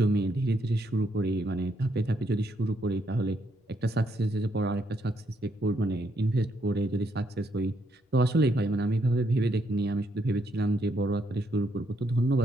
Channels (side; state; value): both; normal; correlation 0.75